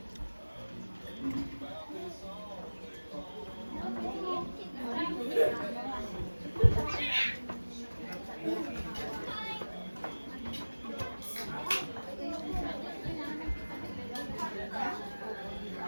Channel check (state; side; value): inverted; both; correlation -1.00